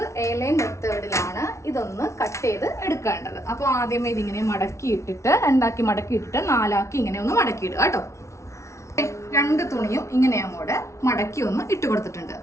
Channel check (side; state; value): right; late; 0.14 ms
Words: A-ലൈൻ മെത്തേഡിലാണ് ഇതൊന്ന് കട്ട് ചെയ്ത് എടുക്കേണ്ടത്. അപ്പോൾ ആദ്യമേ ഇതിങ്ങനെ മടക്കിയിട്ടിട്ട് 2 മടക്കിയിട്ടിട്ട് 4 ഇങ്ങനെ ഒന്ന് മടക്കിയിടുക കേട്ടോ. 2 തുണിയും ഇങ്ങനെ അങ്ങോട്ട് മടക്കി ഒന്ന് ഇട്ട് കൊടുത്തിട്ടുണ്ട്.